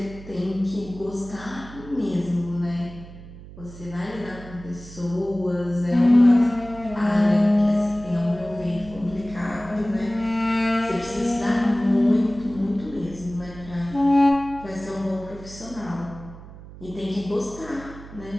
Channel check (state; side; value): noise; right; hum, 16 dB below the sound